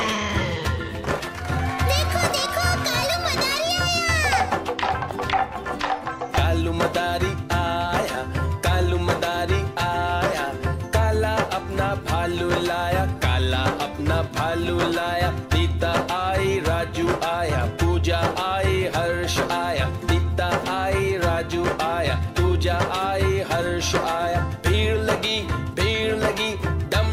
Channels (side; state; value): both; identical; correlation 1.00